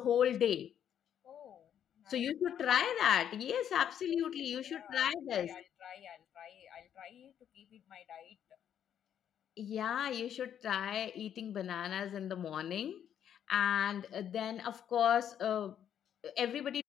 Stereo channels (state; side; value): quieter; right; 9.4 dB